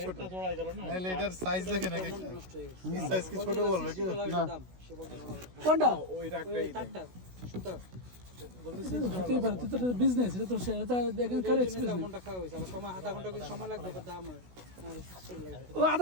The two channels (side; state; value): left; late; 16 ms